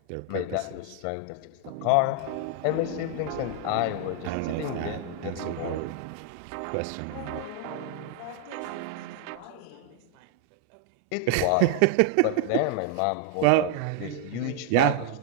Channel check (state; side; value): different; both; correlation 0.00